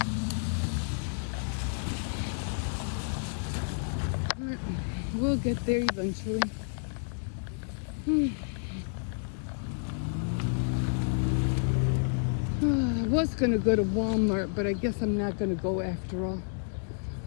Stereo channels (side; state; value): right; silent; digital silence